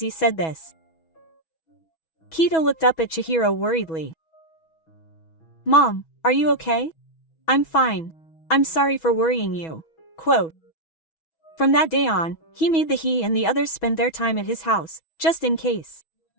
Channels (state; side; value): late; right; 6.2 ms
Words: said this. Kito looked up at Chihiro worriedly. "Mom, are you okay?" "I'm fine. I'm sorry for worrying you." Quote. From that day on, he made he and the others spend their time at his house, just in case.